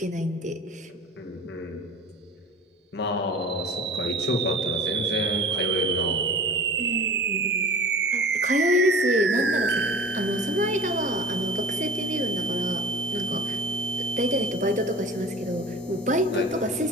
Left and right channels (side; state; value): both; normal; correlation 0.40